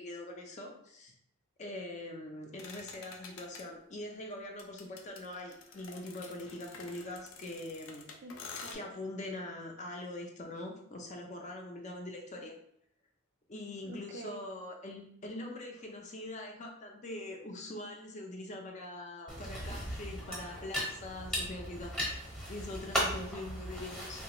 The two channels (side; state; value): both; normal; correlation 0.33